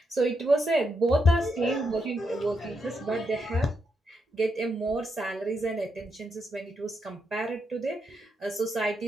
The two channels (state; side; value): normal; both; correlation 0.81